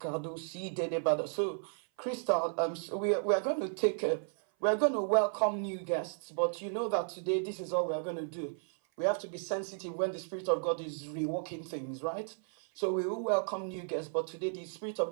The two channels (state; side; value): silent; left; 55 dB below the other